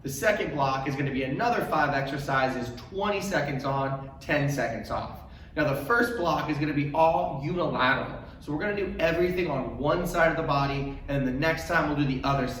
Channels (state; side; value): identical; both; correlation 1.00